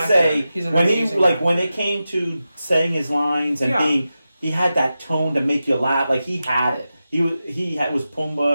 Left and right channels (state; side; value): inverted; both; correlation -0.92